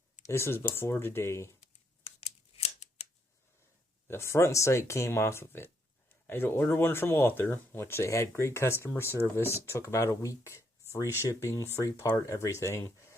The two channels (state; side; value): normal; both; correlation 0.74